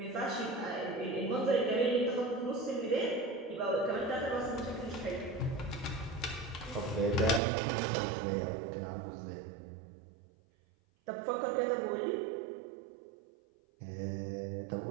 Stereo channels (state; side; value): drops out; left; at 7.4 s